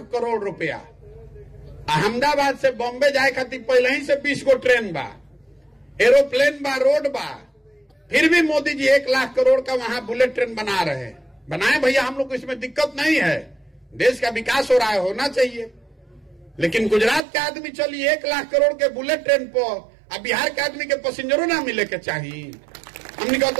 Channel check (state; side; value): drops out; left; at 17.2 s